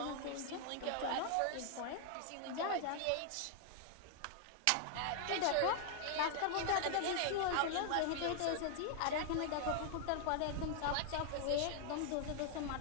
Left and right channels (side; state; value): both; different; correlation 0.00